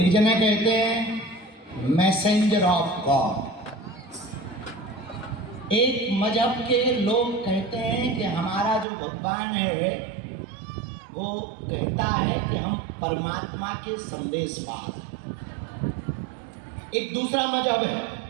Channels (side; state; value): left; drops out; at 8.8 s